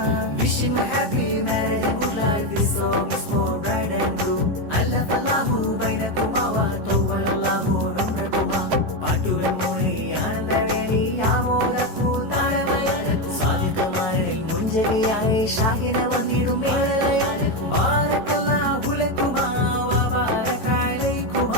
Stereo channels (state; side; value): late; left; 13 ms